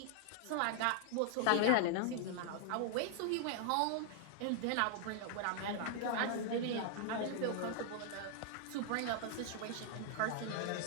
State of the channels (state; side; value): different; both; correlation -0.01